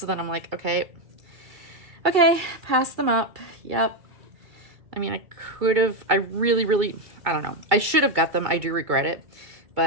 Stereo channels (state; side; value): late; left; 2.3 ms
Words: then I'm like, okay, pass them up. Yep. I mean, I really, I don't know. I should have got them. I do regret it.